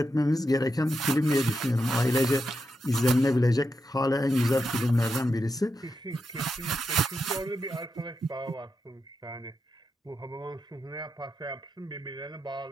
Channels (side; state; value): both; normal; correlation 0.86